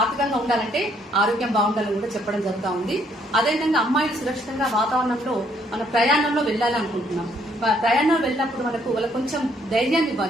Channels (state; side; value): normal; both; correlation 0.67